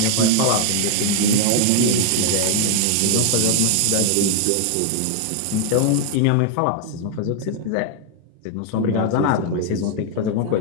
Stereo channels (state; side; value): different; both; correlation 0.00